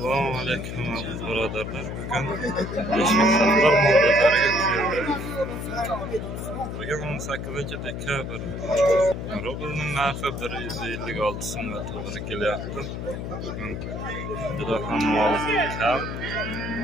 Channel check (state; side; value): noise; left; hum, 6 dB below the sound